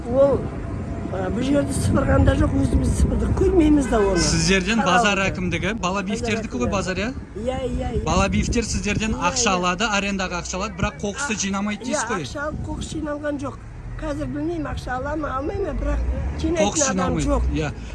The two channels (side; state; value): both; identical; correlation 1.00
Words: Ол бұл жерді сыпырғанда жоқ, өзіміз сыпырдық, көрмейміз да оны. Сіздерден базар әкімдігі, Балабиевтердікі ғой базар, иә? Иә. Балабиевтер сіздерден ақша алады, арендаға ақша алады, бірақ қоқысты жинамайды дейсіз ғой? Ақша алып, қоқыс жиналған жоқ. Қазір білмеймін, ақша ала ма, алмай ма, бірақ жинайтын адам жоқ.